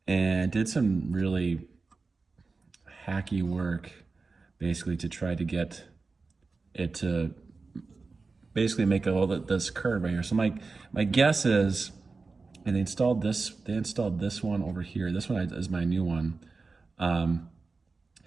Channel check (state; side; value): quieter; left; 4.1 dB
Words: and did some really hacky work basically to try to get it to basically make all this curve right here. So my guess is, and they installed this one over here. This one is my new one. And